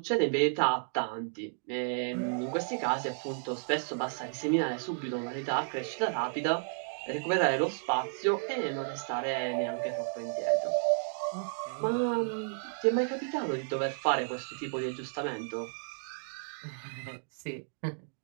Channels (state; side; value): silent; left; digital silence